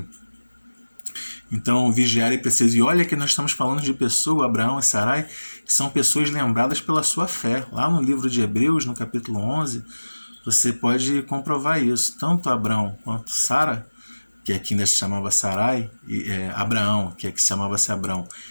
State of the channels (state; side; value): inverted; both; correlation -1.00